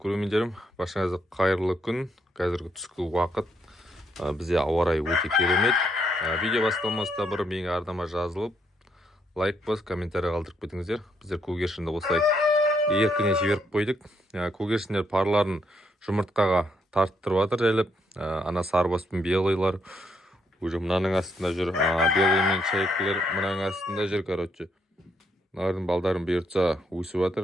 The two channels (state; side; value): normal; both; correlation 0.74